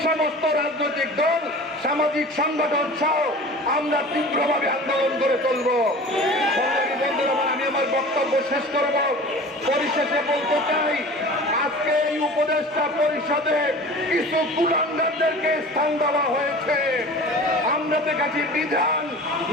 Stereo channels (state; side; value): normal; both; correlation 0.39